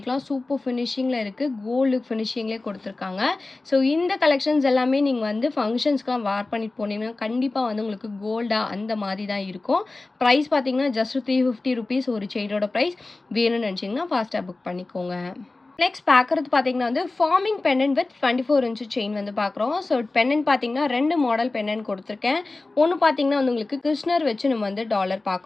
சூப்பர் ஃபினிஷிங்கில் இருக்குது, கோல்டு ஃபினிஷிங்லேயே கொடுத்துருக்காங்க. ஸோ இந்த கலெக்ஷன்ஸ் எல்லாமே நீங்கள் வந்து ஃபங்க்ஷன்ஸ்க்குலாம் வேர் பண்ணிட்டு போனீங்கன்னா கண்டிப்பாக வந்து உங்களுக்கு கோல்டாக அந்த மாதிரி தான் இருக்கும். ப்ரைஸ் பார்த்தீங்கன்னா ஜஸ்ட் $350 ஒரு செயினோட ப்ரைஸ். வேணும்னு நினச்சிங்கன்னா ஃபாஸ்ட்டாக புக் பண்ணிக்கோங்க. நெக்ஸ்ட் பார்க்குறது பார்த்தீங்கன்னா வந்து forming pendant with 24 inch chain வந்து பார்க்குறோம். ஸோ பெண்டன்ட் பார்த்தீங்கன்னா 2 மாடல் பெண்டன்ட் கொடுத்துருக்கேன். ஒன்று பார்த்தீங்கன்னா வந்து உங்களுக்கு கிருஷ்ணர் வச்சு நம்ம வந்து டாலர்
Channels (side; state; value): right; quieter; 3.3 dB